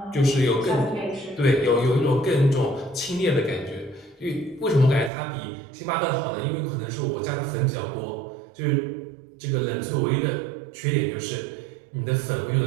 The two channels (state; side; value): drops out; left; at 5.1 s